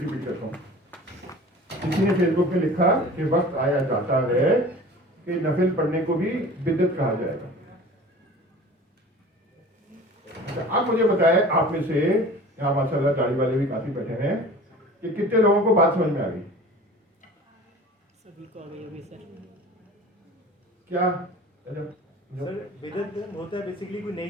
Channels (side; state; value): both; normal; correlation 0.42